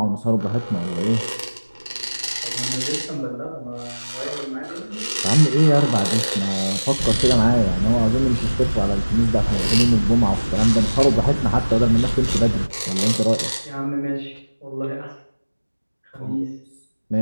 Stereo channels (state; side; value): inverted; both; correlation -1.00